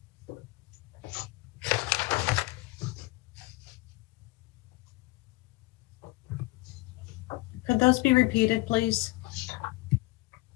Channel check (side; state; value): right; quieter; 22.1 dB